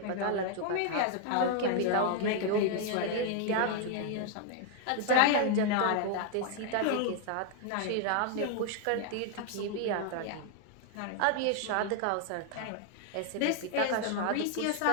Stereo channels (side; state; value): both; different; correlation 0.00